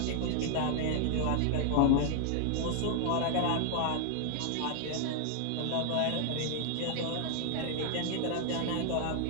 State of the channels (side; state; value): both; different; correlation 0.00